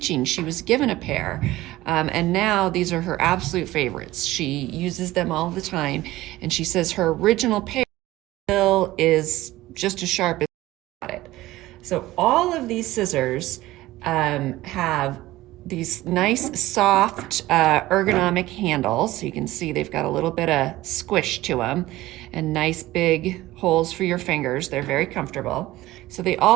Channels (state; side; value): quieter; left; 17.1 dB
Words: She was given a pair, and now these are her absolute favorites. She uses them all the time, and she says her original pair still is just as sharp as she got it. So all of these scissors have these nice soft ergonomic handles. So you can see they've got a little bit of squish to them and nice big holes for your fingers. They're very comfortable. So they